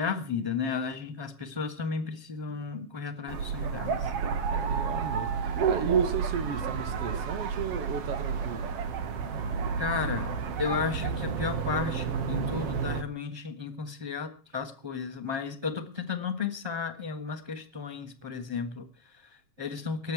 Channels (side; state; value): left; late; 7.4 ms